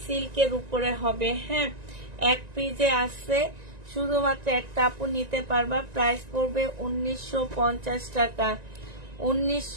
সিল্কের উপরে হবে। হ্যাঁ, এক পিজে আসছে, শুধুমাত্র একটা আপু নিতে পারবা। প্রাইস পড়বে 1950 টাকা।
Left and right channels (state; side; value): late; left; 1.9 ms